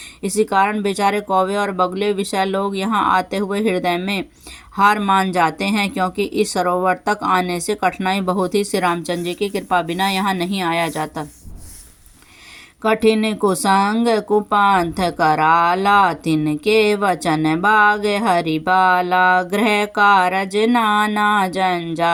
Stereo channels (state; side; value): identical; both; correlation 1.00